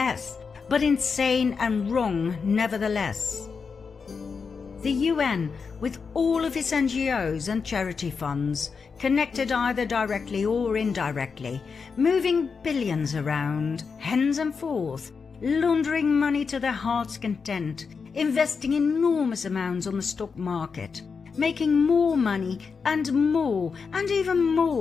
but insane and wrong nevertheless. The UN, with all of its NGOs and charity funds, connected either directly or indirectly, moving billions around, hens and forth, laundering money to their heart's content, investing enormous amounts on the stock market, making more money and even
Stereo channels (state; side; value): quieter; right; 5.4 dB